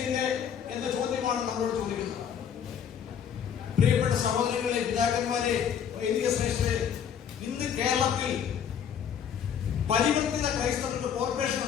ഇല്ലേ എന്ന ചോദ്യമാണ് നമ്മളോട് ചോദിക്കുന്നത്. പ്രിയപ്പെട്ട സഹോദരങ്ങളെ, പിതാക്കന്മാരെ, വൈദിക ശ്രേഷ്ഠരെ, ഇന്ന് കേരളത്തിൽ പരിവർത്തിത ക്രൈസ്തവർക്ക് കോർപ്പറേഷൻ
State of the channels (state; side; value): quieter; right; 8.3 dB